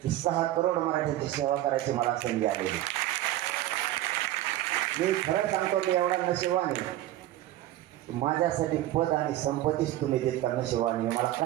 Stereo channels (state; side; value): quieter; left; 14.5 dB